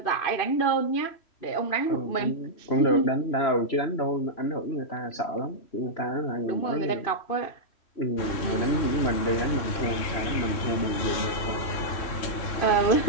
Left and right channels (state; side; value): late; right; 3.1 ms